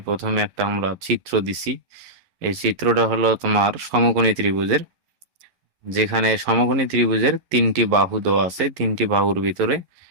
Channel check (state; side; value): late; left; 11 ms